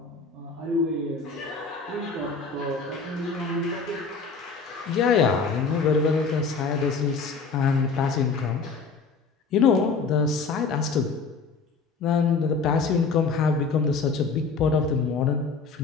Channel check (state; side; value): quieter; right; 4.7 dB